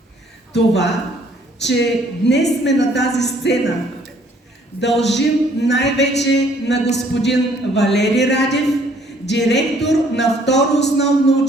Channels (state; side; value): normal; both; correlation 0.62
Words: Това, че днес сме на тази сцена, дължим най-вече на господин Валери Радев, директор на второ основно